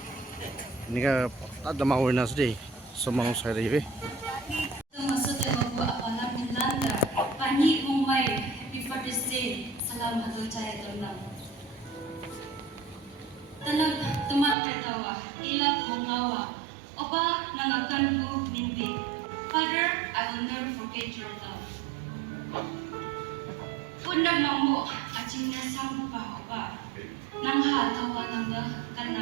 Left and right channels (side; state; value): left; drops out; at 14.6 s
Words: Nika ada mau nasi semang saya ribe. Maksudnya bawa apalah Belanda, pani Mumbai, Happy Father's Day, salam atau cahaya tenang. Tanag teman ketawa, ilak mengawa, oba nangakan ku mimpi. Father, I will never forget your love. Pundak mamu, acingnya sampu pa oba, nang hatawa nangga